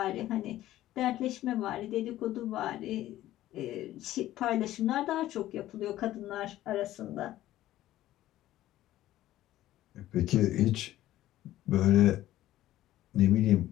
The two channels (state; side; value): quieter; right; 14.4 dB